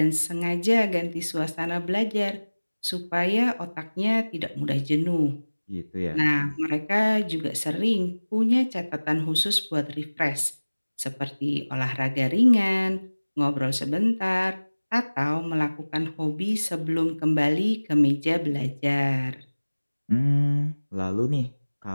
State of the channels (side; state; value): both; inverted; correlation -1.00